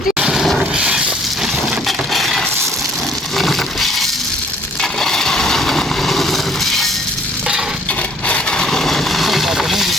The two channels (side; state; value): both; normal; correlation 0.60